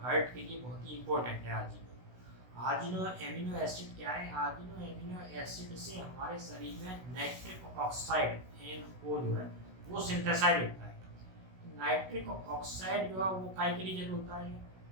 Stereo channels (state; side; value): late; left; 16 ms